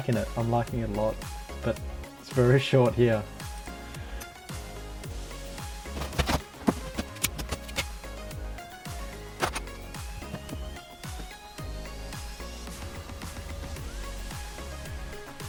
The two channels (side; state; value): both; identical; correlation 1.00